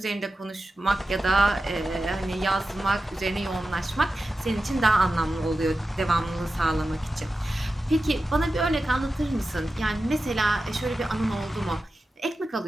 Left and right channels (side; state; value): both; normal; correlation 0.92